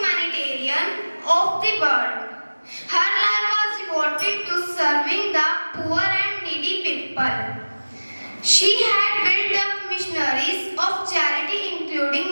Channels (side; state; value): both; inverted; correlation -1.00